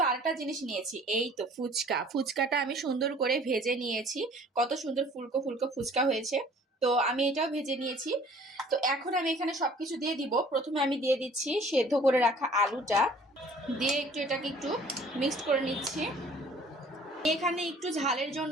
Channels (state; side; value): normal; both; correlation 0.53